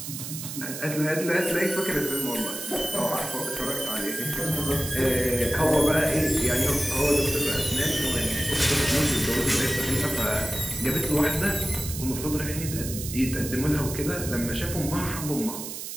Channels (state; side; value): noise; right; hiss, 8 dB below the sound